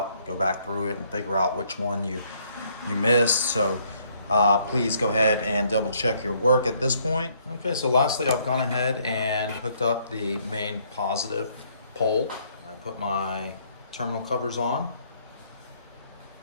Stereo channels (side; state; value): both; inverted; correlation -0.67